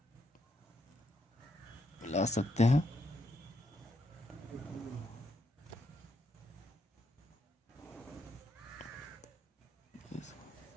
मिला सकते हैं।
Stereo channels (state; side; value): normal; both; correlation 0.78